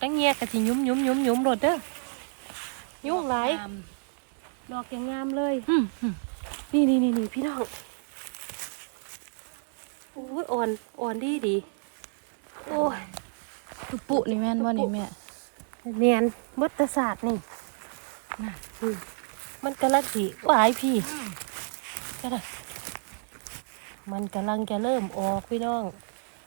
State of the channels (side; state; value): left; silent; digital silence